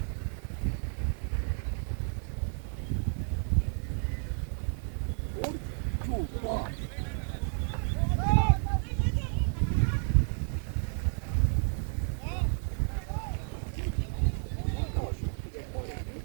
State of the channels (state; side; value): silent; left; 57 dB below the other